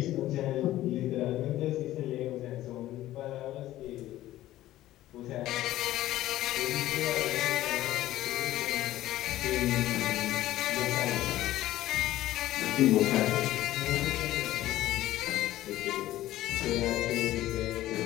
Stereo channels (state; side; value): quieter; right; 14.8 dB